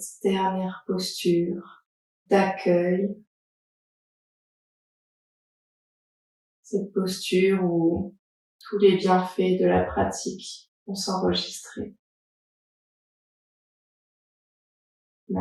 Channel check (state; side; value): identical; both; correlation 1.00